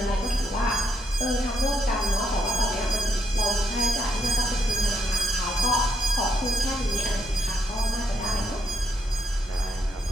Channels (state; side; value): normal; both; correlation 0.77